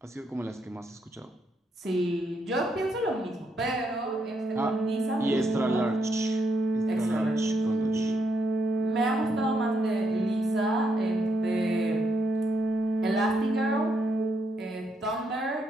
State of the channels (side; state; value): both; normal; correlation 0.78